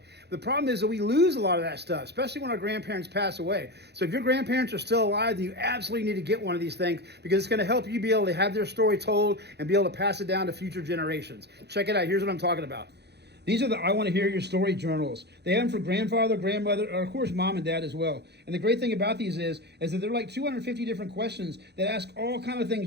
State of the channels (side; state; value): left; late; 0.48 ms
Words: The problem is that we lose a lot of that stuff, especially when our grandparents pass away. So if your grandparents are still alive, then you absolutely need to get one of these things, because it's going to help you be able to have their story told and be able to pass it down to future generations. Check it out. Here's what I'm talking about. These are the I Want to Hear Your Story journals. They have them for grandfather, grandmother, or of course mom and dad as well. And the great thing about these is that they're like 250 different questions that ask all kind of